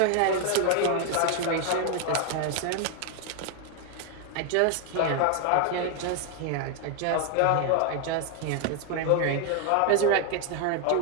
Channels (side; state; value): both; different; correlation 0.01